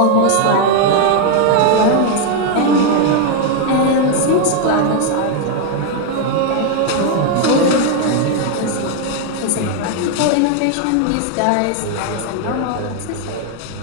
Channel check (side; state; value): both; different; correlation 0.01